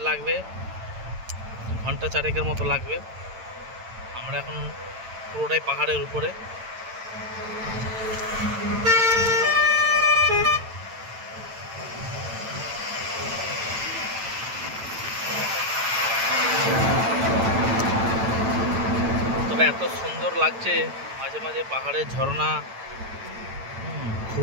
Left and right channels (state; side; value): late; left; 9.0 ms